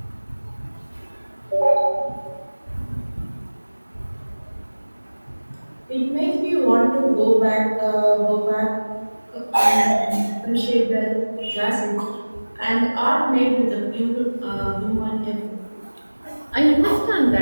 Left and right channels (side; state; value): both; inverted; correlation -1.00